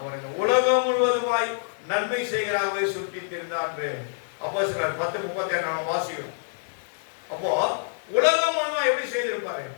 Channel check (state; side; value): silent; right; digital silence